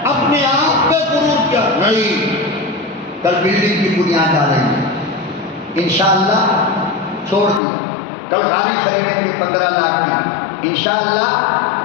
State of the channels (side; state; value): right; drops out; at 7.6 s